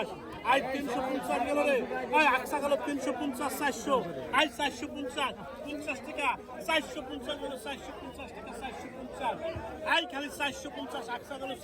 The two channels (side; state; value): both; identical; correlation 1.00